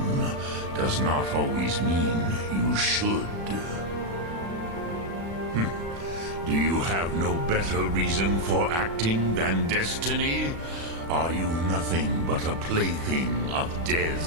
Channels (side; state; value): left; late; 36 ms